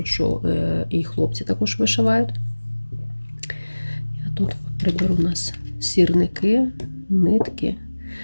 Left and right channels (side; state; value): both; inverted; correlation -1.00